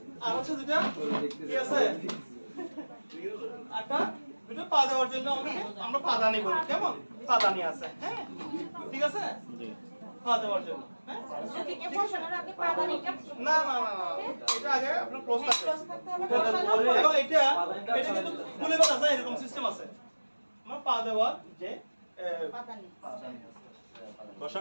আর হচ্ছে দুটো কি আছে? একটা দুটো পা দেওয়ার জন্য আমরা পাদানি বলি, কেমন? পাদানি আছে, হ্যাঁ, ঠিক আছে? জি। পা দেওয়ার জন্য, হ্যাঁ? যদি কে বসানোর আগে পাদানিটা না না না না, এটা আগে আপনার ক্লোজ থাকবে, ক্লোজ থাকতে হবে, বসানোর এবং পরে এটা কিন্তু খুলে ফেলা যায়, এরকম সিস্টেম আছে। আমার পা দেওয়ার যে পাদানি। বসা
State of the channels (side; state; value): both; inverted; correlation -1.00